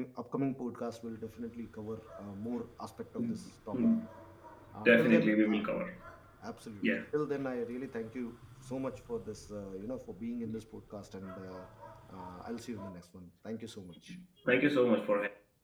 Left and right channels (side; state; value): both; identical; correlation 1.00